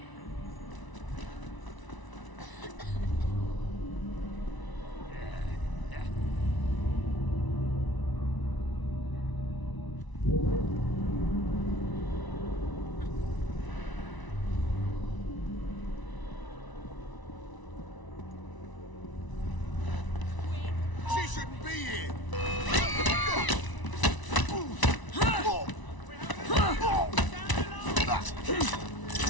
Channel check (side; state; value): right; late; 1.0 ms